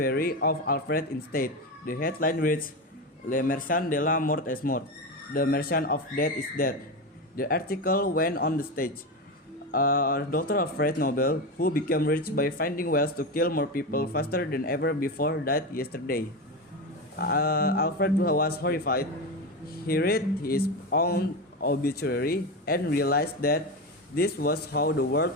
of Alfred instead. The headline reads, "Le Merchant de la Mort est mort." The merchant of death is dead. The article went on the stage. Dr. Alfred Nobel, who became rich by finding ways to kill more people faster than ever before, died yesterday. Alfred was horrified. He read his own obituary and realized that this was how the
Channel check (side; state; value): both; normal; correlation 0.18